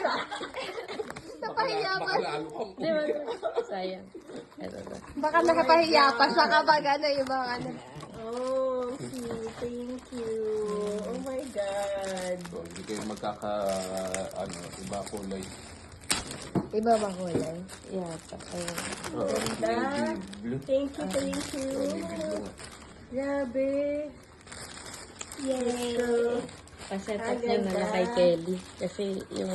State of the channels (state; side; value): identical; both; correlation 1.00